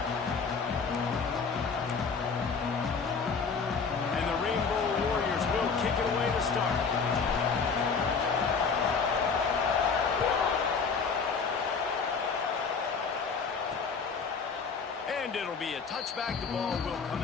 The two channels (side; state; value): right; quieter; 5.3 dB